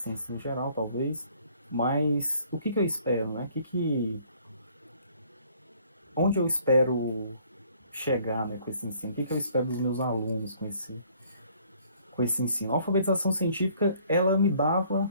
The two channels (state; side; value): inverted; both; correlation -0.60